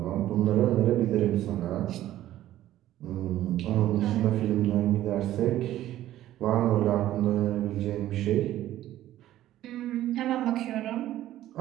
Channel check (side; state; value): left; quieter; 13.6 dB